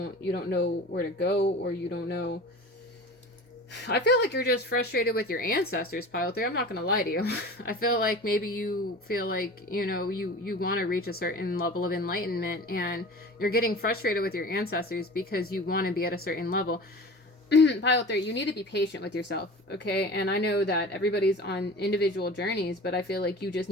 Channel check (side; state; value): both; normal; correlation 0.37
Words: know where to go, or you don't know. I feel like you're just frustrated with your ancestors, pile 3. I'm not gonna lie to you. I feel like maybe you feel like, you know, you want to reach a certain level of enlightenment and you're getting frustrated with your ancestors because you want to be at a certain level. Pile 3, you need to be patient with yourself, okay? And I know that everybody's on individual journeys, but I feel like you just